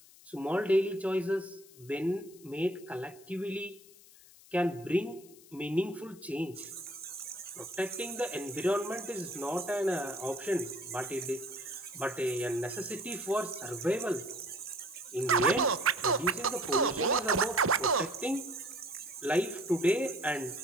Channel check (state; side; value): noise; left; hiss, 23 dB below the sound